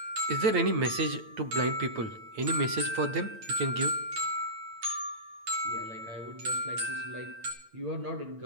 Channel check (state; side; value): late; left; 8.9 ms